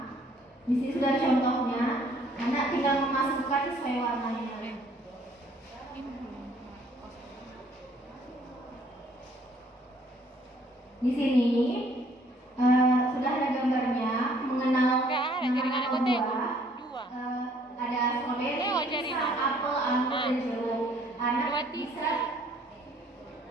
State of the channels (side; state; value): both; normal; correlation 0.61